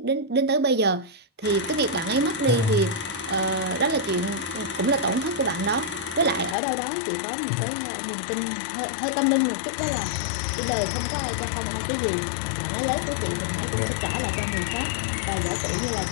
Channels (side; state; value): right; drops out; at 6.6 s